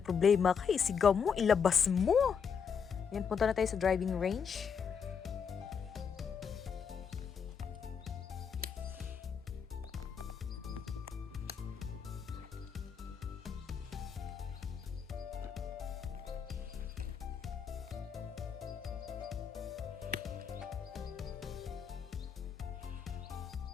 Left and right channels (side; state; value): right; quieter; 6.7 dB